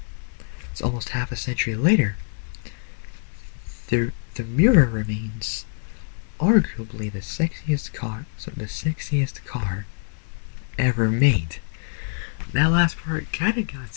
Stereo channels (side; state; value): right; silent; digital silence